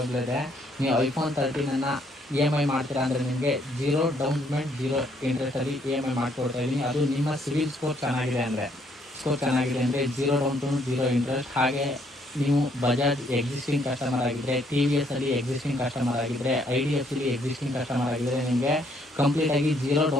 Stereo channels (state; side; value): normal; both; correlation 0.68